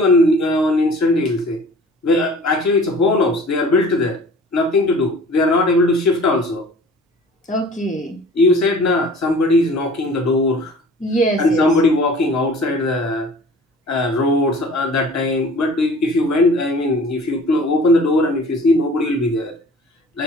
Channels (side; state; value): both; normal; correlation 0.46